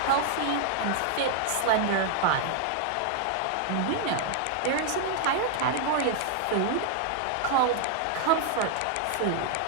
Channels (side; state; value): both; different; correlation 0.00